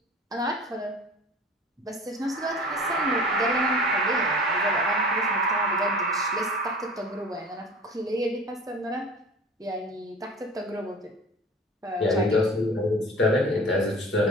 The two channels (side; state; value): both; normal; correlation 0.40